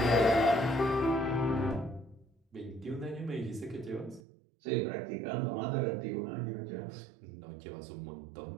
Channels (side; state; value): left; drops out; at 4.2 s